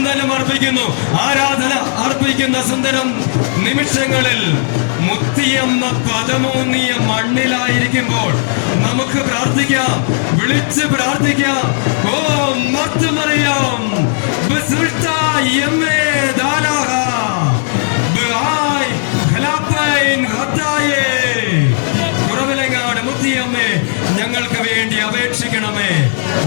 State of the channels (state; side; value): silent; right; digital silence